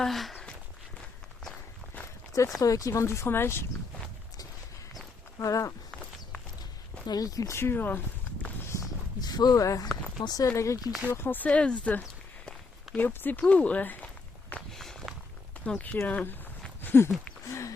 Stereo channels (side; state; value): right; quieter; 4.0 dB